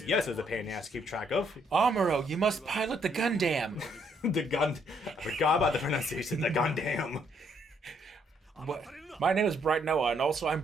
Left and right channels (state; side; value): normal; both; correlation 0.70